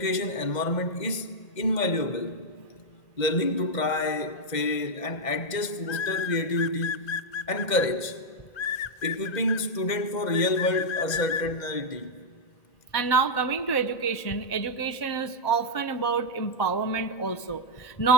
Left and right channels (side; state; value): right; late; 2.1 ms